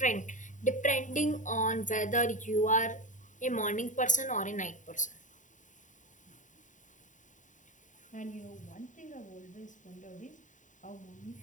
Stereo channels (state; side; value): late; right; 0.36 ms